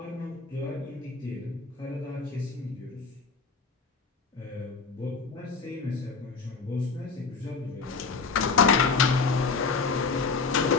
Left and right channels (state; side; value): quieter; right; 4.7 dB